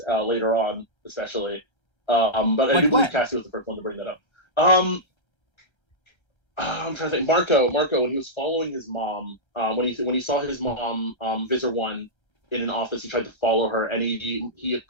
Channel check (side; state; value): right; late; 1.3 ms